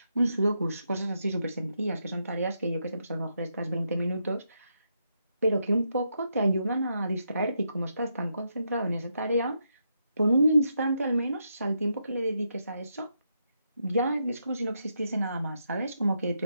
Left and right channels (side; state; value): both; inverted; correlation -0.81